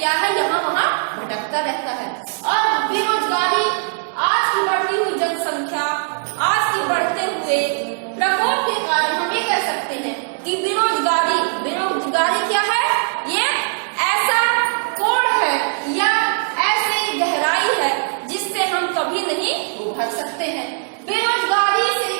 है, यहाँ वहाँ भटकता रहता है। और बेरोजगारी, आज की बढ़ती हुई जनसंख्या, आज की बढ़ते हुए प्रकोप के कारण हम ये कह सकते हैं कि बेरोजगारी क्या है? ये ऐसा कोड़ है या ऐसी गहराई है जिससे हम कभी नहीं उभर सकते हैं। बेरोजगारी से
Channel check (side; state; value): left; silent; digital silence